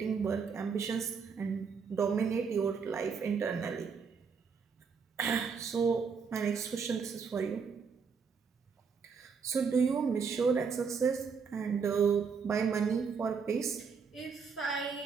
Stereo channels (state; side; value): quieter; left; 5.8 dB